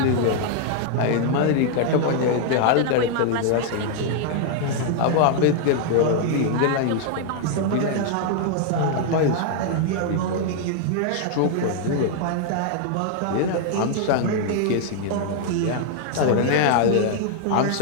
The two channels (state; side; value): different; both; correlation 0.00